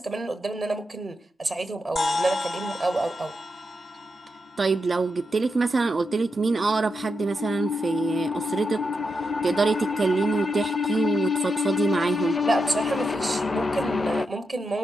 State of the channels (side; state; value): both; normal; correlation 0.85